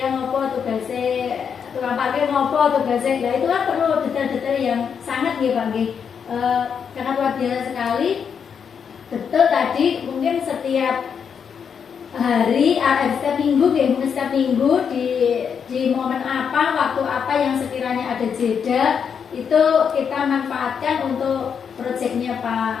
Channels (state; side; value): quieter; right; 7.0 dB